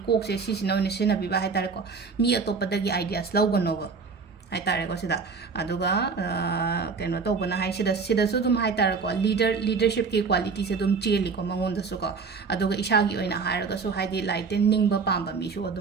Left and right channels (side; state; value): left; quieter; 5.0 dB